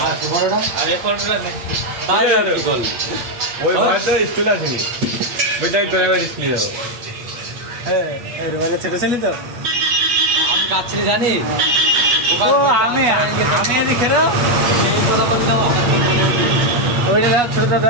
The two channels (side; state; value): left; late; 8.3 ms